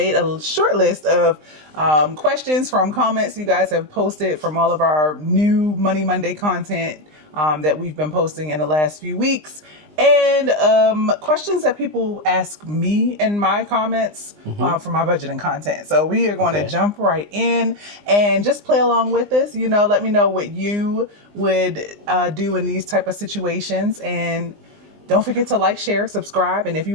a short list of questions from comments you guys have posted from all of our new Money Monday content that we've been posting in the last few weeks. And questions that people ask me in my comments for my budgeting content. So we are going to jump right in and just play along with this. You know, let me know what you would do in these type of situations. And don't forget to like, share, subscribe. And if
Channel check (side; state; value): left; late; 20 ms